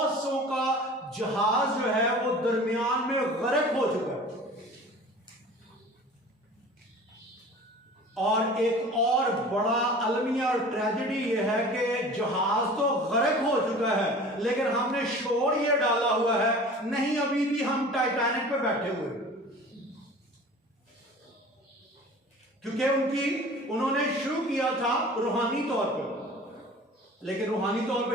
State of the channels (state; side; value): normal; both; correlation 0.42